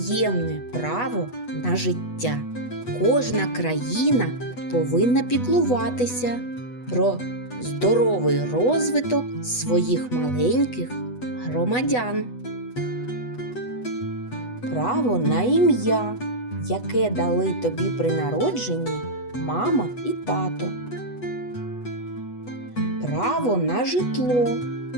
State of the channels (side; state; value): right; late; 8.1 ms